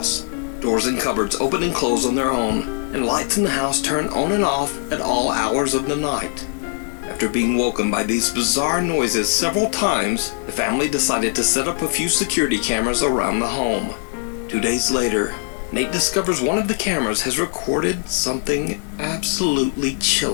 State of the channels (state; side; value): silent; right; 55 dB below the other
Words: Doors and cupboards open and close on their own, and lights in the house turn on and off at all hours of the night. After being woken by these bizarre noises several times, the family decided to set up a few security cameras around the home. 2 days later, Nate discovers one of the cameras has recorded something absolutely